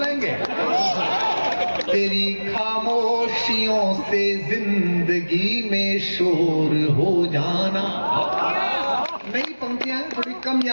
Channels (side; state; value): both; inverted; correlation -1.00